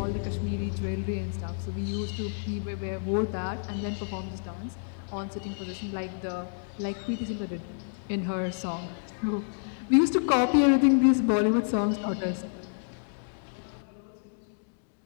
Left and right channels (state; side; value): silent; right; digital silence